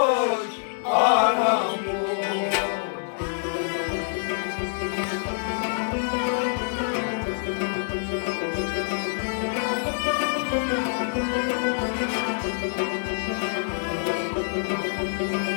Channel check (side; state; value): right; silent; digital silence